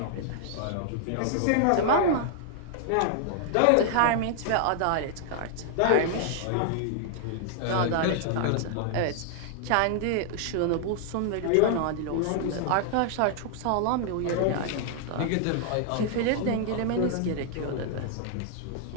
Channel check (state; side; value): different; both; correlation 0.00